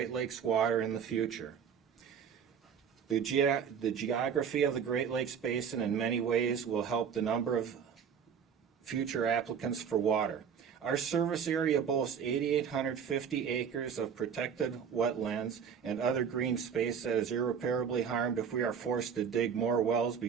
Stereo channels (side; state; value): left; quieter; 7.4 dB